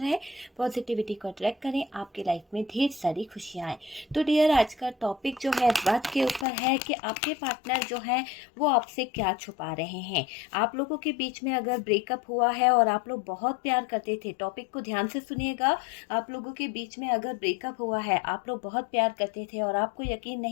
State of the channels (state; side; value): drops out; right; at 6.5 s